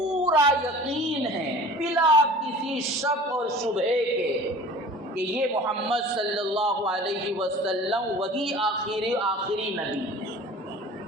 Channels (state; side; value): normal; both; correlation 0.43